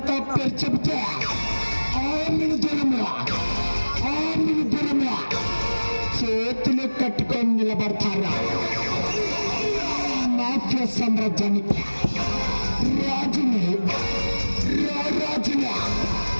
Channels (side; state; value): both; inverted; correlation -1.00